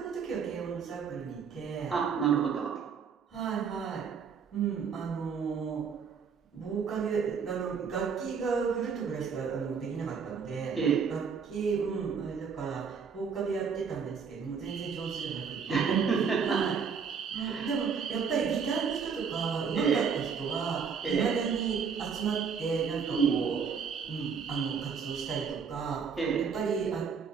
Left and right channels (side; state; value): left; quieter; 6.2 dB